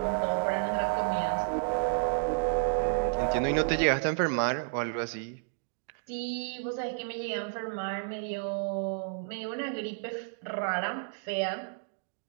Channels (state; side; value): silent; left; digital silence